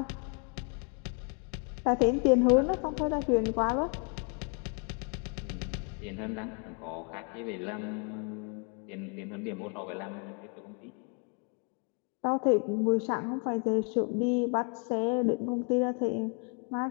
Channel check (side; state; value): right; quieter; 37.7 dB